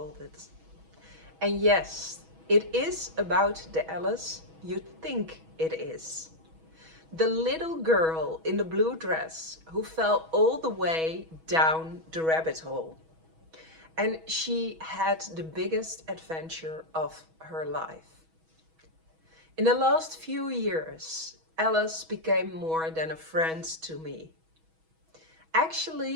And yes, it is about the Alice you think it is. The little girl in the blue dress who fell all the way down the rabbit hole. And she had the biggest adventure of her life. In the last few years, Alice became more than a friend to me.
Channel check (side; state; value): left; late; 6.2 ms